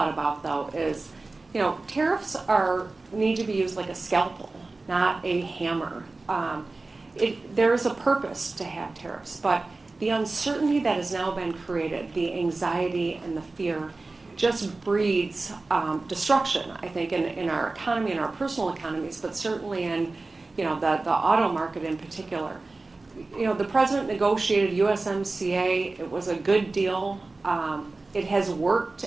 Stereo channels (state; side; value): quieter; left; 3.4 dB